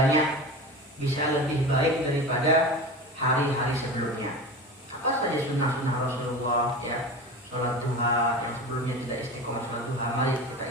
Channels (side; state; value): both; normal; correlation 0.30